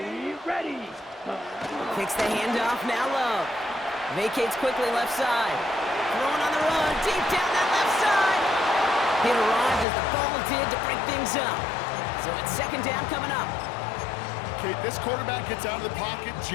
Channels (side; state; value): right; drops out; at 9.9 s